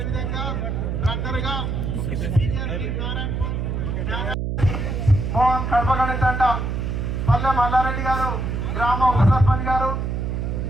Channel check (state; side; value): noise; right; hum, 2 dB below the sound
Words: రన్నర్గా మోహన్ కడపగణి తండ పల్లె మల్లారెడ్డి గారు, గ్రామ ఉప సర్పంచ్ గారు,